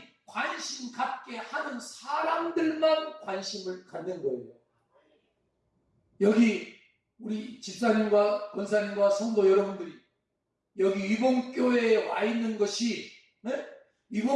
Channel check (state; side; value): identical; both; correlation 1.00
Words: 관심 갖게 하는 사람들만 관심을 갖는 거예요. 여기 우리 집사님과 권사님과 성도 여러분들이 여기 위봉교회에 와 있는 것이